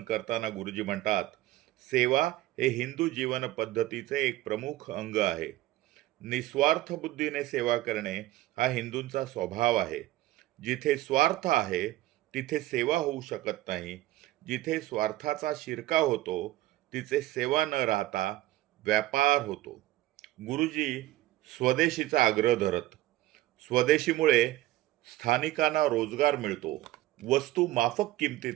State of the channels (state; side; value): quieter; left; 16.3 dB